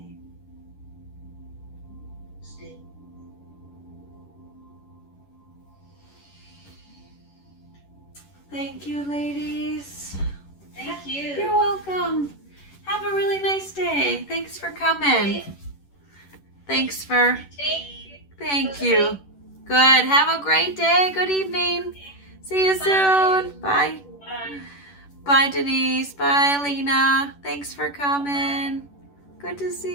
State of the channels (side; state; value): right; late; 11 ms